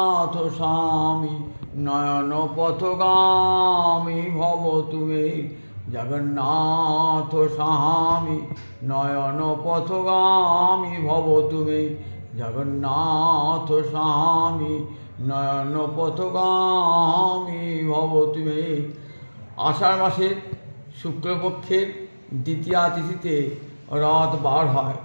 স্বামী নয়ন পথগামী ভব তুমি জগন্নাথ স্বামী নয়ন পথগামী ভব তুমি জগন্নাথ স্বামী নয়ন পথগামী ভব তুমি। আষাঢ় মাসের শুক্লপক্ষের দ্বিতীয়া তিথিতে রথ বার হয়।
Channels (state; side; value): inverted; both; correlation -1.00